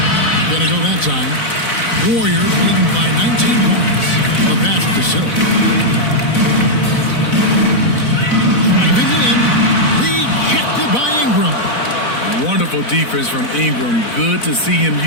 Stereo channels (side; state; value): right; late; 4.0 ms